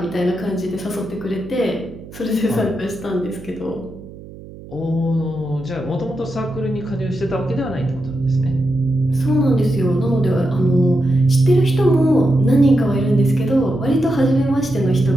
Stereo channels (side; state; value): right; noise; hum, 17 dB below the sound